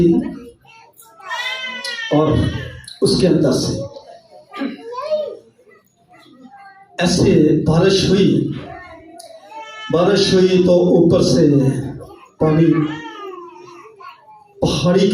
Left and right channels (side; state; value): both; identical; correlation 1.00